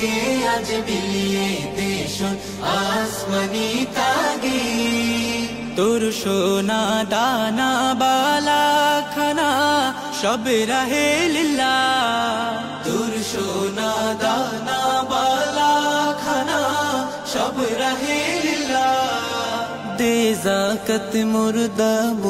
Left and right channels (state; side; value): identical; both; correlation 1.00